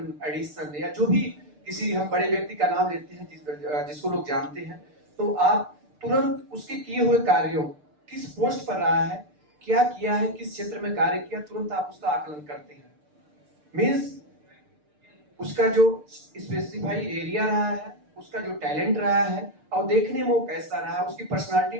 एडिसन, या जो भी किसी हम बड़े व्यक्ति का नाम लेते हैं जिसको लोग जानते हैं, तो आप तुरंत उसके किए हुए कार्यों, किस पोस्ट पर रहा है, क्या किया है, किस क्षेत्र में कार्य किया, तुरंत आप उसका आकलन करते हैं। मीन्स उसका जो स्पेसिफाई एरिया रहा है, उसका जो टैलेंट रहा है, और देखने में वो कैसा रहा है, उसकी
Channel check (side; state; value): left; late; 6.7 ms